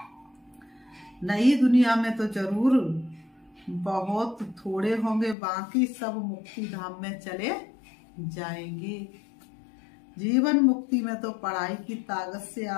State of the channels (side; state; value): right; drops out; at 5.4 s